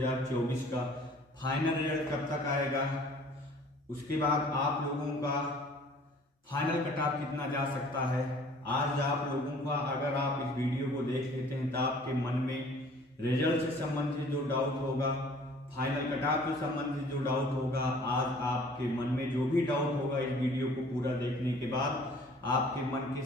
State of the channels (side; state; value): both; normal; correlation 0.52